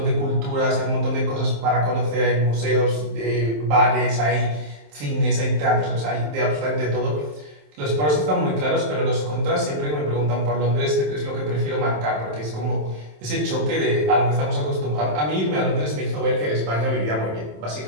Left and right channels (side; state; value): left; late; 27 ms